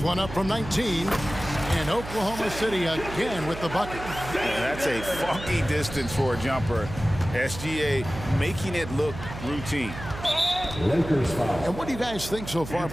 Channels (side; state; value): right; noise; hum, 10 dB below the sound